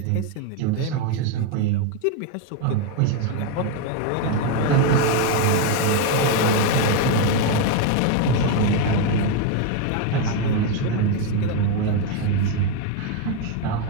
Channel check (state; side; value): different; both; correlation 0.02